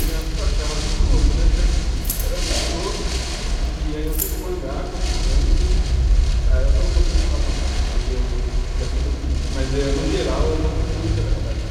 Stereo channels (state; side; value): identical; both; correlation 1.00